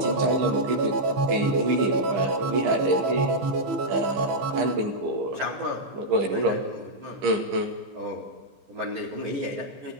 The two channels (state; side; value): late; left; 15 ms